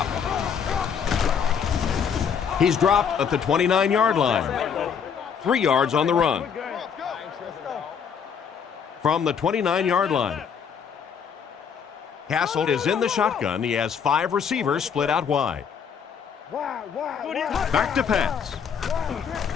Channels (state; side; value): quieter; right; 7.1 dB